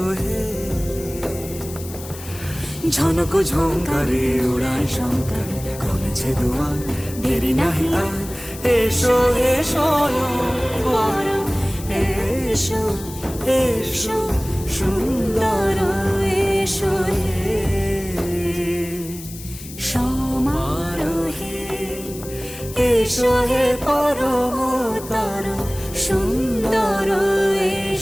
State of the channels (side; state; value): left; noise; hiss, 14 dB below the sound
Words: হে। ঝনক ঝঙ্কারে উড়ায় শঙ্কর, কমেছে দুয়ার দেরি নাহি আর, এসো হে স্বয়ং পরম, এসো এসো সুন্দর, এসো হে সমারোহে। এসো হে পরমতর সুন্দর,